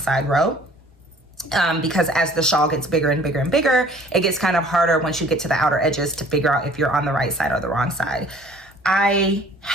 row. Because as the shawl gets bigger and bigger and bigger, it gets kind of harder once you get to the outer edges to figure out if you're on the right side or the wrong side. I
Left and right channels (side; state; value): both; normal; correlation 0.53